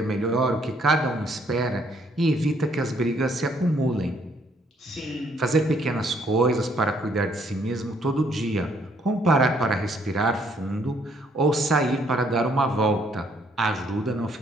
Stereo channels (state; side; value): normal; both; correlation 0.67